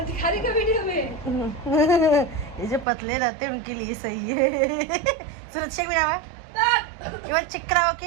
का वीडियो में ये जो पतले रहते हैं उनके लिए सही है। सुरक्षा भी रहा केवल चिकरा हो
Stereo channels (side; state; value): left; drops out; at 2.9 s